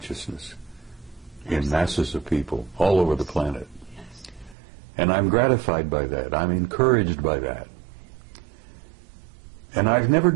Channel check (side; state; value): left; drops out; at 4.5 s